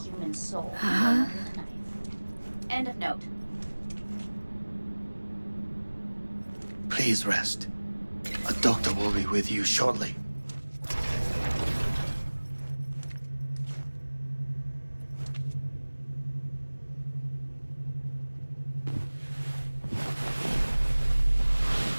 Human soul. Under the knife. End of note. Please rest. A doctor will be with you shortly.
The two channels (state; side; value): inverted; both; correlation -1.00